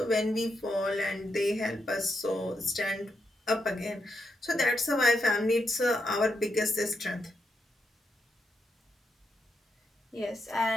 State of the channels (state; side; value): normal; both; correlation 0.83